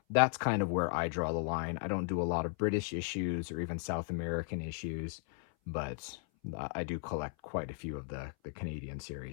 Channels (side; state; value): right; silent; 54 dB below the other